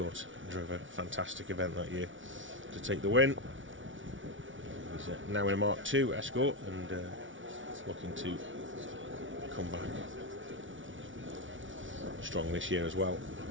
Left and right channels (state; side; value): late; left; 0.56 ms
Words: and drove a fantastic event that year to take the win. He's now in a Mark 2 Escort and looking to come back strong this year as well.